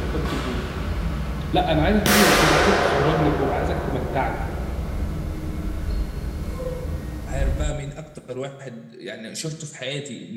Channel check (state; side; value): identical; both; correlation 1.00